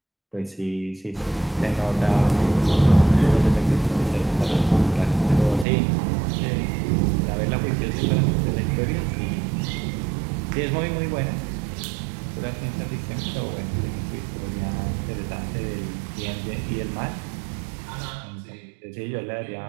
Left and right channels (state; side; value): drops out; left; at 5.7 s